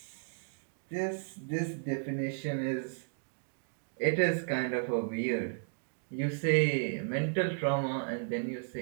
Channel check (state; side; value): silent; left; digital silence